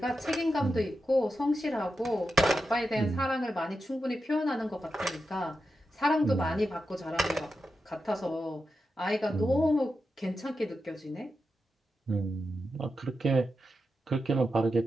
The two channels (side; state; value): both; normal; correlation 0.89